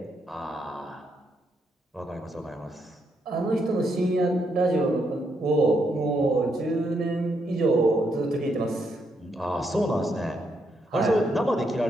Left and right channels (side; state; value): both; normal; correlation 0.78